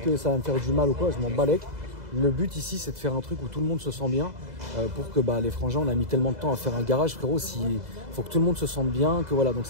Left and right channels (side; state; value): left; late; 2.0 ms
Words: ça va me faire du mal ou quoi. Je m'en balèque. Le but ici, c'est de faire un truc où tout le monde se sent bien. Pour que les frangins, on a mis tellement de temps à faire un garage, frérot. Il faut que tout le monde se sente bien. Que voilà. Donc